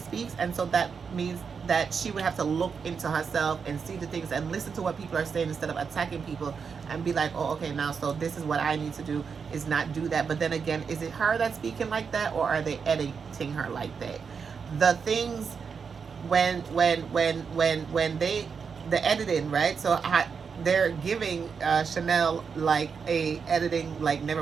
And so that means that she would have to look into herself and see the things and listen to what people are saying instead of attacking people and be like, oh, okay, now so this is what I need to do, is not do that. But then again, is it her that's speaking like that, or are they editing her like that? The things when they the editing, right? So they're giving Chanel like a editing like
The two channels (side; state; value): left; quieter; 6.0 dB